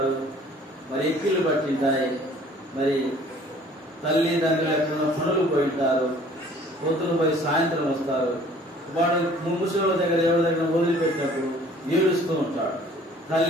మరి ఎక్కిళ్ళు పట్టింటాయి, మరి తల్లిదండ్రులు ఎక్కడ పనులు పోయింటారు, పొద్దున పోయి సాయంత్రం వస్తారు. వాడు ముసలి దగ్గర ఎవరి దగ్గర వదిలిపెట్టినప్పుడు ఏడుస్తూ ఉంటాడు.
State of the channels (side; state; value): both; normal; correlation 0.53